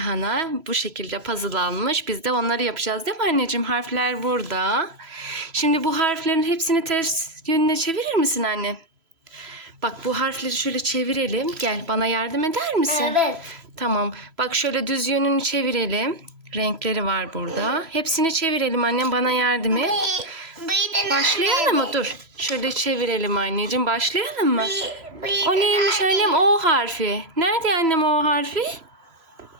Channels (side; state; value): left; late; 3.0 ms